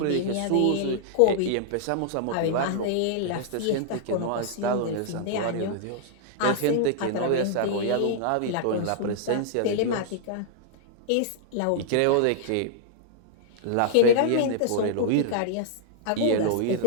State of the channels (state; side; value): different; both; correlation -0.01